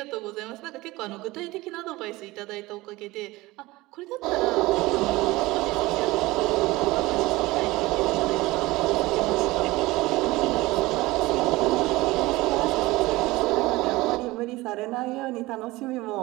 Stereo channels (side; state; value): left; quieter; 20.1 dB